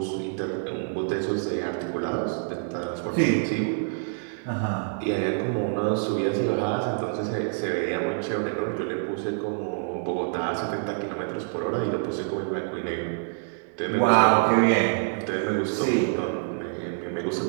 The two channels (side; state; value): left; silent; digital silence